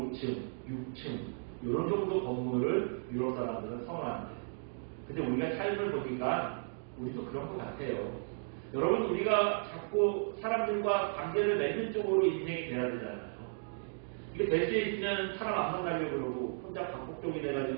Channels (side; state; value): left; silent; digital silence